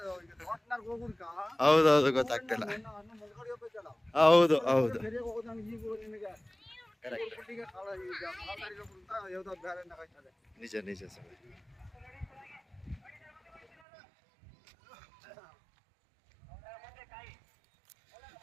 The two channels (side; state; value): left; drops out; at 13.7 s